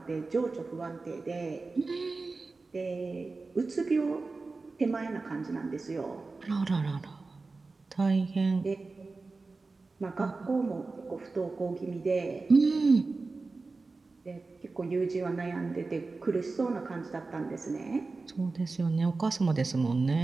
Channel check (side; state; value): left; quieter; 3.8 dB